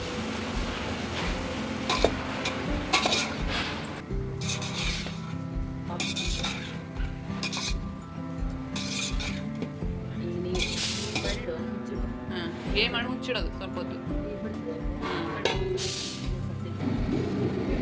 ಏ ಮಾಡಿ ಮುಚ್ಚಿಡೋದು ಸ್ವಲ್ಪ ಹೊತ್ತು.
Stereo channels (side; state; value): both; identical; correlation 1.00